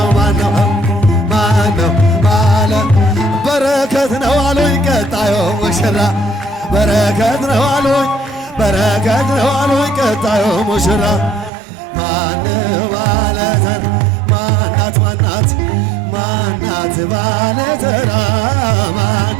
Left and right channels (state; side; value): drops out; left; at 11.5 s